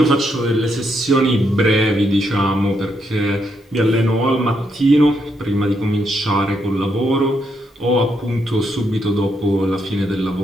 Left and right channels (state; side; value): normal; both; correlation 0.78